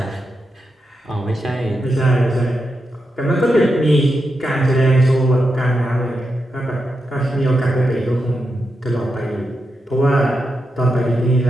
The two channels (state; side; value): normal; both; correlation 0.87